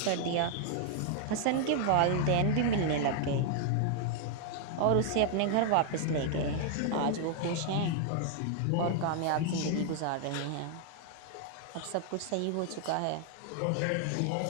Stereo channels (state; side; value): different; both; correlation 0.00